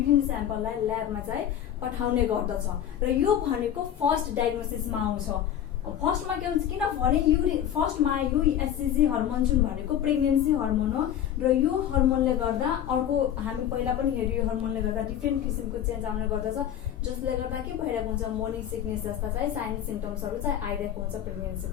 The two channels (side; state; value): right; quieter; 10.4 dB